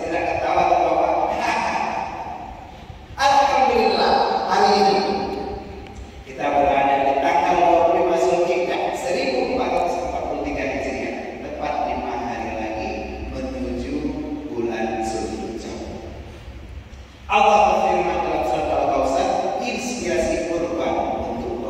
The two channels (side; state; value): both; identical; correlation 1.00